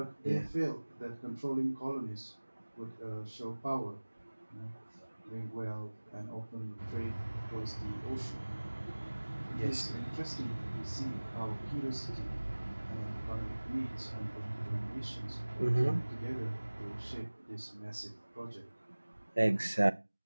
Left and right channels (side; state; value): both; inverted; correlation -1.00